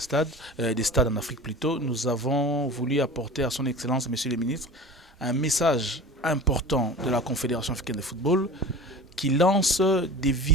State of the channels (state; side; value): normal; both; correlation 0.37